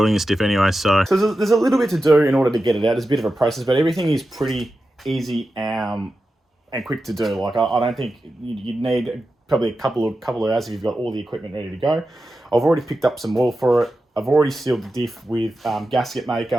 this diff anyway. So there's a little bit to do in order to get it out. There's a bit of a process, but everything is pretty easy and quick to do. Like I don't think you'd need probably a couple of hours if you've got all the equipment ready to go. I've already picked up some oil for it. I've already sealed the diff with gasket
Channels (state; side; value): normal; both; correlation 0.92